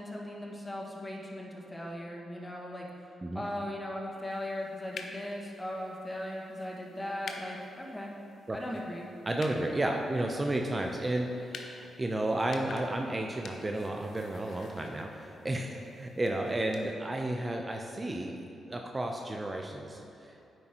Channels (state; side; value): normal; both; correlation 0.91